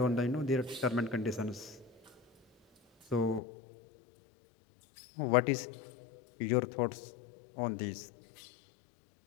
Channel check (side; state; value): right; drops out; at 3.4 s